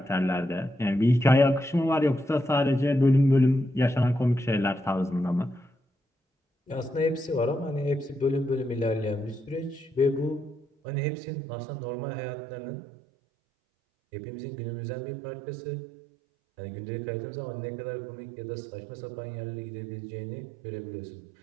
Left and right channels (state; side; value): drops out; left; at 10.7 s